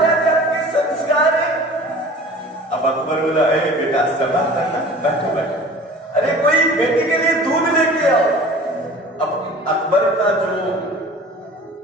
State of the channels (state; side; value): normal; both; correlation 0.43